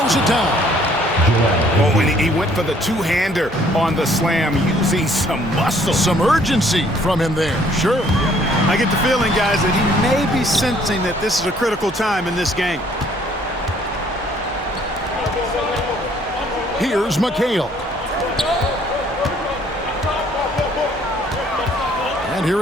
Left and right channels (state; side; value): normal; both; correlation 0.61